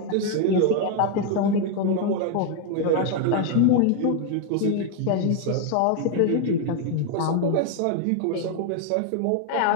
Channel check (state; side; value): different; both; correlation 0.01